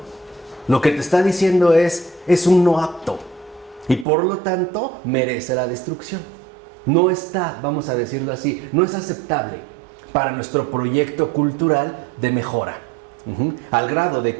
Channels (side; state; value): left; drops out; at 4.0 s